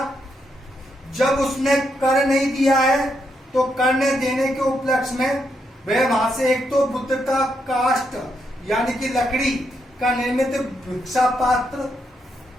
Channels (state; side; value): normal; both; correlation 0.79